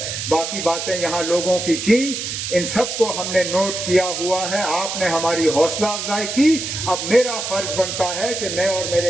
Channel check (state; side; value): noise; right; hiss, 4 dB below the sound